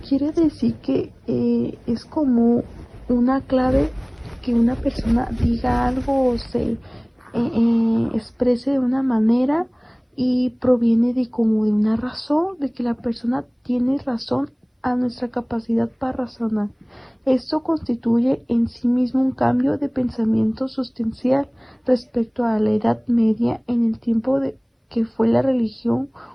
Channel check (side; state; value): both; identical; correlation 1.00